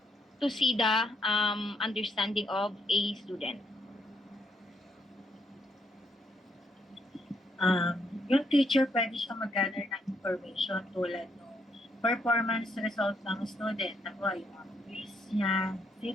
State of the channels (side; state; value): both; normal; correlation 0.75